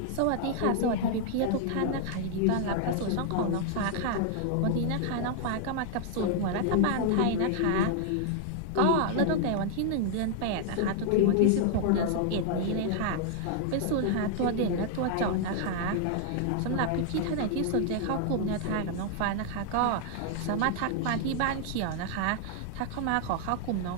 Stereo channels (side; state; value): both; different; correlation 0.00